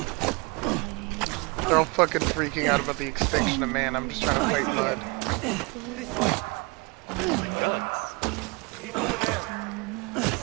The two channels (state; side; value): quieter; left; 28.3 dB